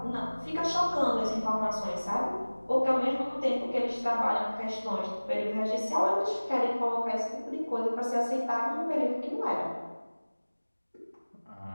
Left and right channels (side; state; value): both; inverted; correlation -1.00